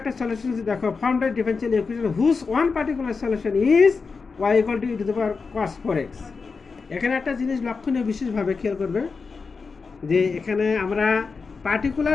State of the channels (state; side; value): quieter; right; 4.8 dB